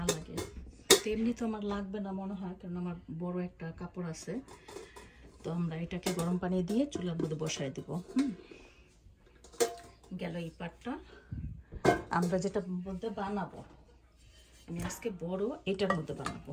লাগে। তো এমনি তো আমার লাগবে না মনে হয়, কারণ আমার বড় একটা কাপড় আছে। তো আমরা এটাকে গরম পানি দিয়ে চুলার মধ্যে বসাই দেবো। গেল এই পাটটা। আমরা যেটা মধ্যে বানাবো, আমি আজকে বড় এটার মধ্যে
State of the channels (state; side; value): identical; both; correlation 1.00